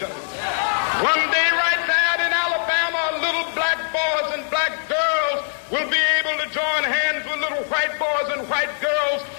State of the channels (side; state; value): right; silent; digital silence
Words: One day right there in Alabama, little black boys and black girls will be able to join hands with little white boys and white girls